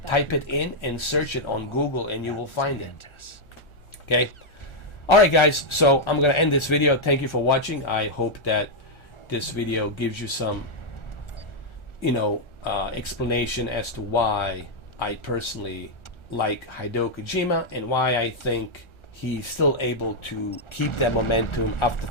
in and search it on Google, and you will find it. Okay. Alright guys, so I'm gonna end this video. Thank you for watching. I hope that this video gives you some, you know, explanation as to why I personally like Hideo Kojima and why I think he's still able to keep that momentum after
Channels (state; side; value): late; right; 1.4 ms